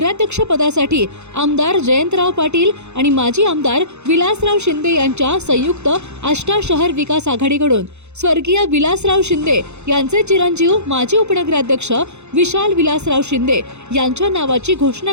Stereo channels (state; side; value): late; left; 0.82 ms